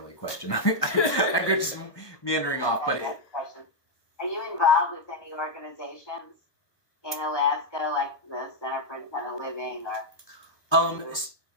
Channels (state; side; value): late; right; 1.2 ms